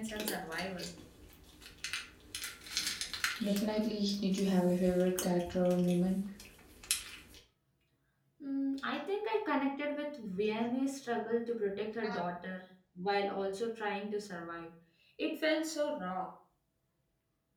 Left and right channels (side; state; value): both; identical; correlation 1.00